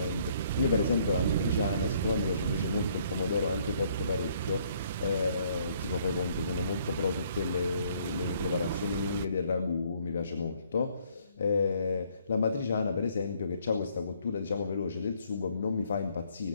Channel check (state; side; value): inverted; both; correlation -0.65